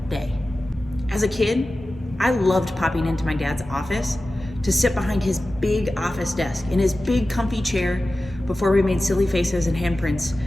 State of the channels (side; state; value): both; normal; correlation 0.95